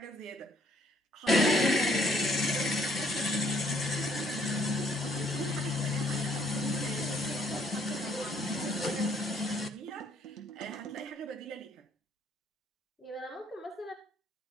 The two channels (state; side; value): normal; both; correlation 0.65